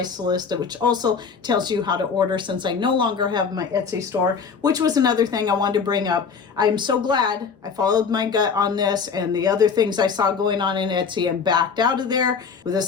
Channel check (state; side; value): quieter; right; 5.8 dB